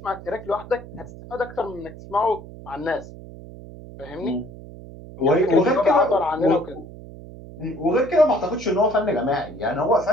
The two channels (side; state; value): right; noise; hum, 15 dB below the sound